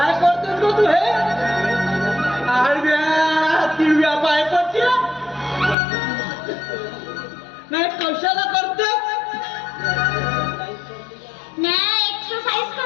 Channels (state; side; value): drops out; right; at 5.8 s